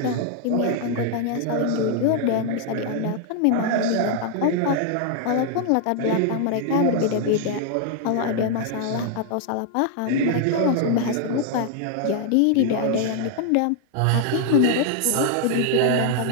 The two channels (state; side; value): different; both; correlation 0.00